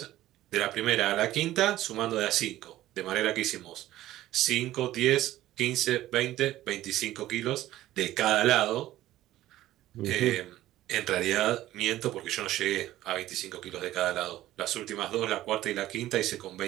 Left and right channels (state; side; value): quieter; left; 14.7 dB